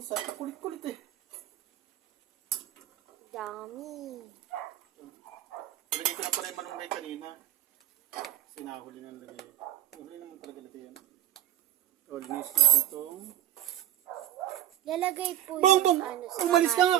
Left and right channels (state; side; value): quieter; left; 12.7 dB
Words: Kulit-kulit eh. Dami. Lagay ko na pala yung malunggay kanina. Sinahuli na lagay. Huli naman talaga lagay yan. O, linis natin itong... Lalagay po Bongbong! sa Umalis ka nga